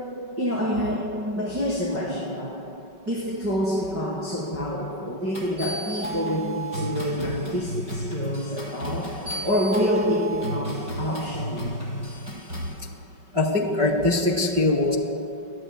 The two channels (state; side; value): late; left; 5.3 ms